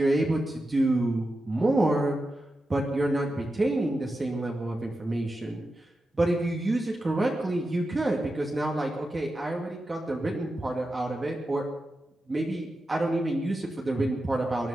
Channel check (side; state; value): both; normal; correlation 0.90